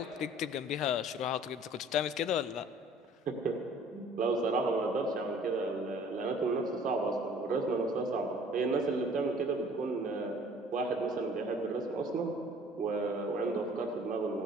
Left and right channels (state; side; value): normal; both; correlation 0.52